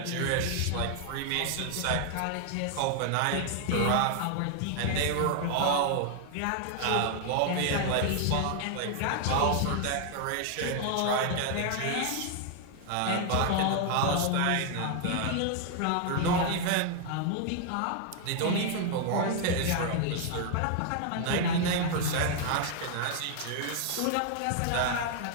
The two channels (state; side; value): different; both; correlation 0.00